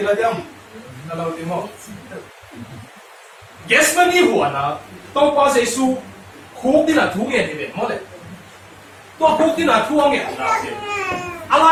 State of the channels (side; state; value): both; identical; correlation 1.00